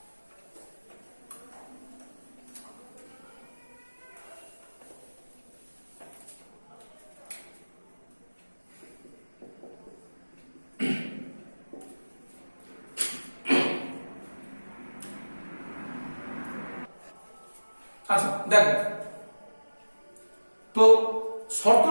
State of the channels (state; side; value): inverted; both; correlation -1.00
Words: আচ্ছা দেখো, তো